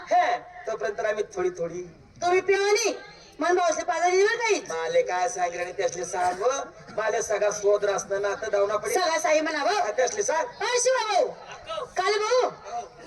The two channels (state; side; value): identical; both; correlation 1.00